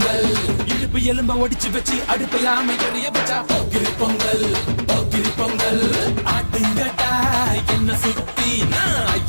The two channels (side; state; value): both; inverted; correlation -1.00